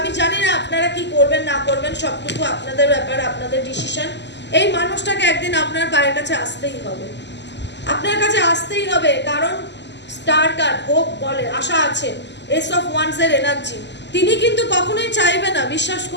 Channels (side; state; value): right; late; 0.51 ms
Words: জানি না আপনারা কি করবেন না করবেন, সবটুকু আপনাদের ব্যাপার, আপনাদের ডিসিশন। এই মানুষটাকে একদিন আপনার পায়ের কাছে আসতেই হবে, আপনার কাছে আসতেই হবে। কারণ স্টার কার্ড হোপ বলে, আশা আছে, এস অফ ওয়ান্সের এনার্জি। তিনি কিন্তু কখনোই চাইবে না, বিশ্বাস